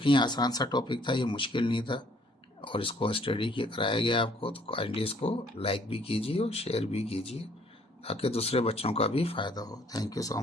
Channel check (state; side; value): normal; both; correlation 0.61